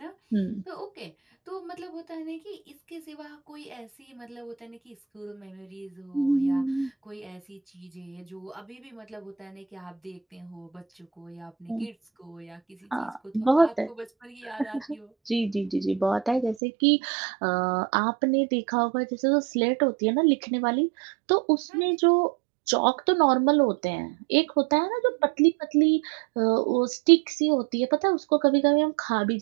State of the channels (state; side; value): drops out; left; at 16.6 s